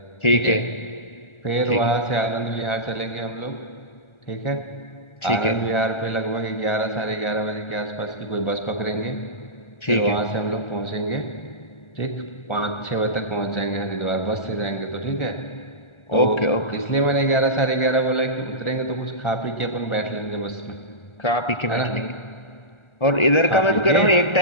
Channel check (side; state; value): right; late; 1.3 ms